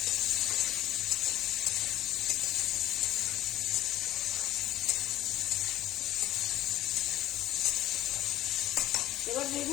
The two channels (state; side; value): quieter; right; 13.9 dB